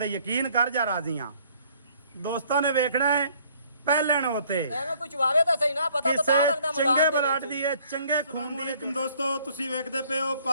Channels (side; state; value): both; inverted; correlation -0.61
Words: यकीन कर जा राजी हाँ। दोस्तों ने वेखना है ਪਹਿਲਣ ਹੋਤੇ ਐਵੇਂ ਕੁਝ ਵਾਵੇ ਤਾਂ ਸਹੀ ਨਾ ਪਤਾ ਤਾਂ ਲੱਗਦਾ ਚੰਗੇ ਬਲਾਟ ਦੀ ਹੈ ਚੰਗੇ ਖੂਨ ਦੀ। ਤੁਮ ਦੋਸਤੋ ਤੁਸੀਂ ਵੇਖਦੇ ਪਏ ਹੋ